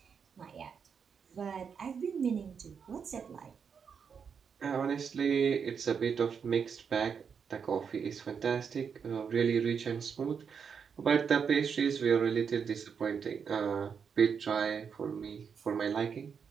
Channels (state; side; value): quieter; left; 6.6 dB